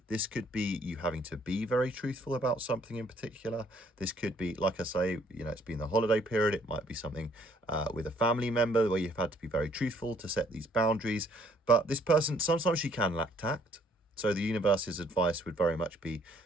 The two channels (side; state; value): both; normal; correlation 0.64